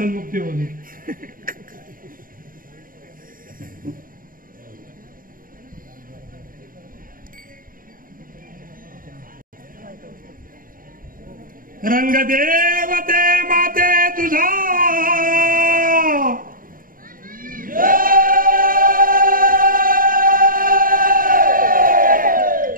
होते. रंग देवते माते तुझा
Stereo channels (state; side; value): late; left; 0.41 ms